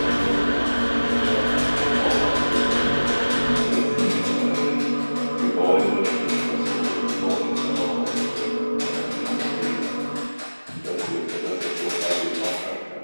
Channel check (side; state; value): both; inverted; correlation -1.00